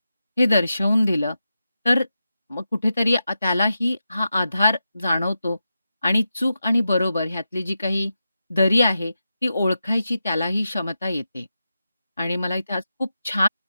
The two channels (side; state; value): both; inverted; correlation -0.90